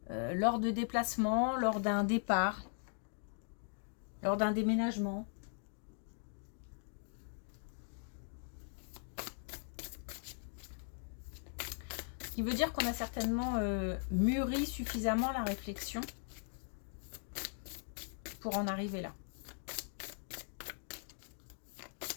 lors de déplacements, lors d'un départ, lors d'un déménagement. Ce qui veut dire qu'on a certainement mûri suffisamment la réflexion pour en arriver là.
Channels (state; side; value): silent; right; 51 dB below the other